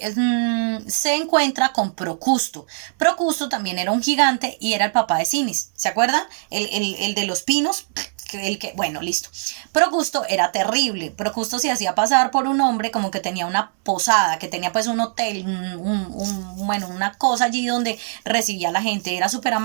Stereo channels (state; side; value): silent; left; digital silence